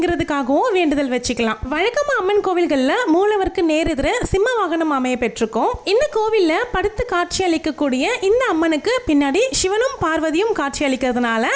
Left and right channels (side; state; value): both; identical; correlation 1.00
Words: வேண்டுதல் வச்சுக்கலாம். வழக்கமா அம்மன் கோவில்கள்ல மூலவருக்கு நேரெதிர சிம்ம வாகனம் அமைய பெற்றிருக்கும். இந்த கோவில்ல படுத்து காட்சி அளிக்கக்கூடிய இந்த அம்மனுக்கு பின்னாடி சிவனும் பார்வதியும் காட்சி அளிக்கிறதுனால